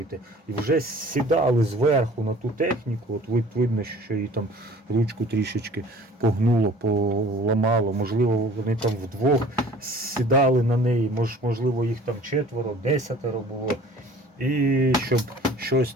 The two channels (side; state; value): both; normal; correlation 0.49